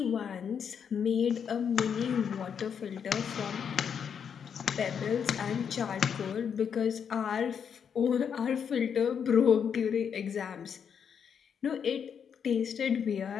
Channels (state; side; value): quieter; right; 7.4 dB